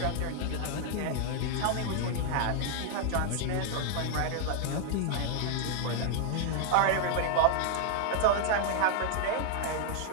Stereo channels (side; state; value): both; different; correlation 0.00